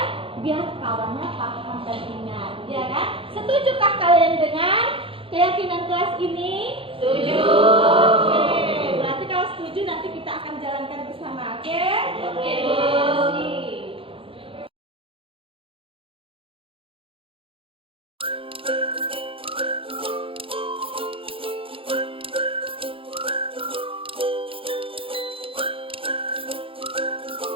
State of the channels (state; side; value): late; left; 0.26 ms